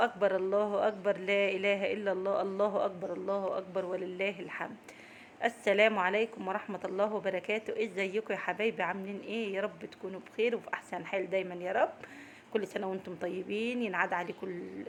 أكبر الله أكبر، لا إله إلا الله، الله أكبر الله أكبر ولله الحمد. السلام عليكم ورحمة الله وبركاته. ازيكم يا حبايبي؟ عاملين ايه؟ يا رب تكونوا بخير وفي أحسن حال دايما يا رب. كل سنة وانتم طيبين، ينعاد عليكم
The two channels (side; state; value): both; identical; correlation 1.00